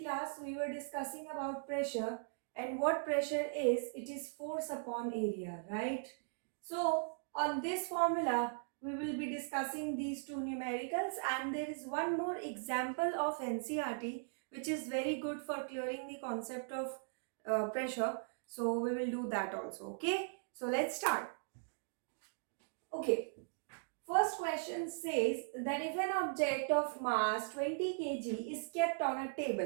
class we were discussing about pressure, and what pressure is. It is force upon area, right? So on this formula we will be discussing these two numericals, and there is one more example of NCERT which is very good for clearing the concept of pressure. So we will do that also. Okay, so let's start. Okay, first question says that if an object of mass 20 kg is kept on a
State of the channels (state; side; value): silent; left; digital silence